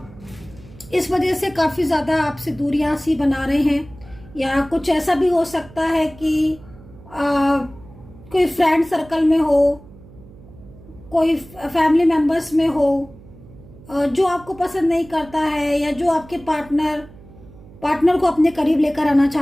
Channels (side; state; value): right; noise; hum, 21 dB below the sound